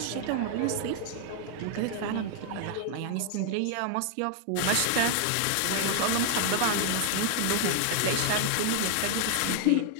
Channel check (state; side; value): different; both; correlation 0.00